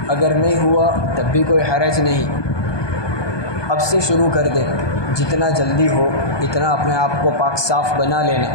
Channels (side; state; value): right; late; 1.2 ms